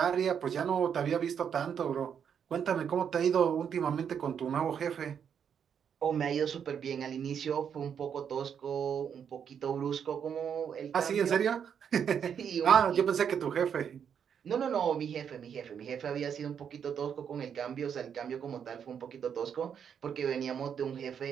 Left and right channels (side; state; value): left; quieter; 7.8 dB